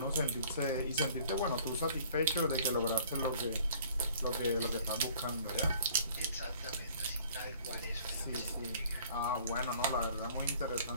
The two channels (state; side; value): inverted; both; correlation -0.54